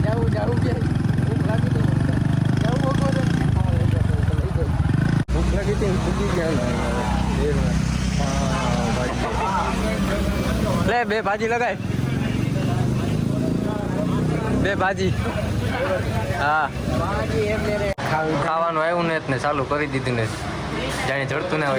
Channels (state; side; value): identical; both; correlation 1.00